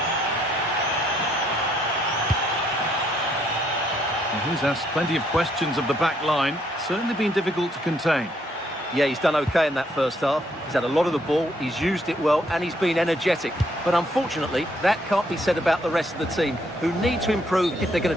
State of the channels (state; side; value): normal; both; correlation 0.70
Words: He's asked plenty of questions of the back line. Certainly been difficult to contain. Yeah, he's done okay in that first half. He's had a lot of the ball, he's used it well, and he's been energetic. But unfortunately, that can't be said about the rest of the team, who need to improve if they're going